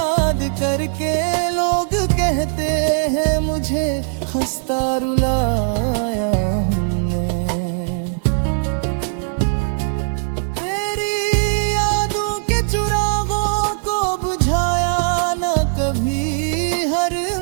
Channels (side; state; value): left; silent; digital silence